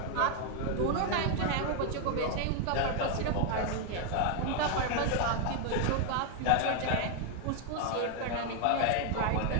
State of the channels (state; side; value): different; both; correlation 0.01